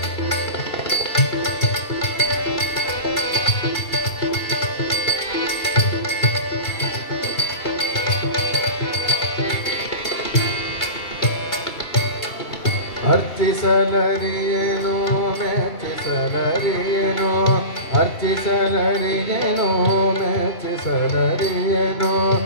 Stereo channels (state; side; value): late; right; 3.1 ms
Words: ಅರ್ಚಿಸಲರಿಯೇನೋ ಮೆಚ್ಚಿಸಲರಿಯೇನೋ ಅರ್ಚಿಸಲರಿಯೇನೋ ಮೆಚ್ಚಿಸಲರಿಯೇನೋ